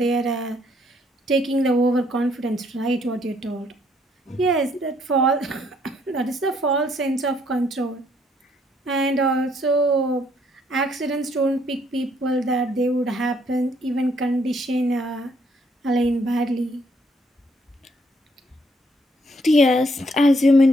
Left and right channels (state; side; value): normal; both; correlation 0.68